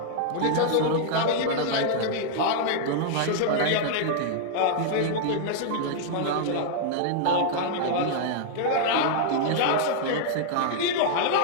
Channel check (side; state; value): both; different; correlation -0.01